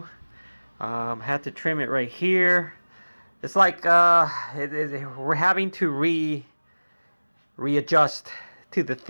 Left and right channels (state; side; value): inverted; both; correlation -1.00